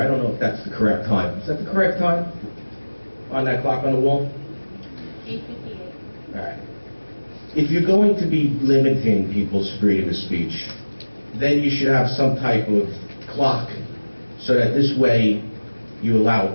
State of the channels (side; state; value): both; inverted; correlation -1.00